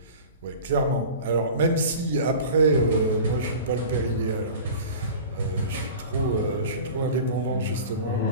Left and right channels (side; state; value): both; inverted; correlation -0.37